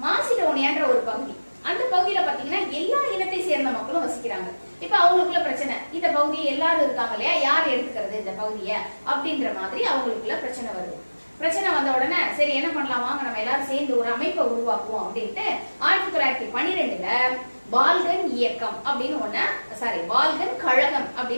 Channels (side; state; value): both; inverted; correlation -1.00